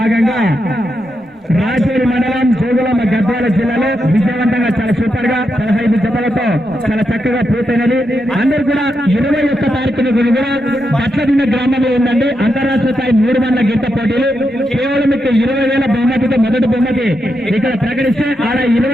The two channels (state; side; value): normal; both; correlation 0.84